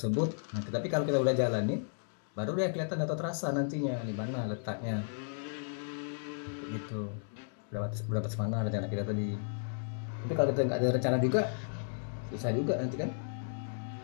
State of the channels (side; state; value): right; silent; digital silence